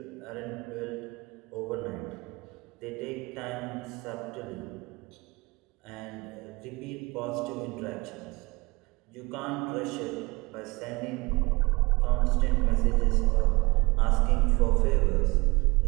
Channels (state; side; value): quieter; left; 24.7 dB